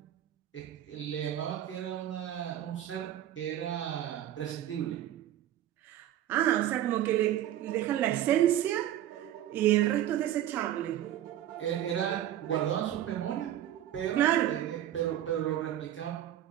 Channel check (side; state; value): left; quieter; 11.9 dB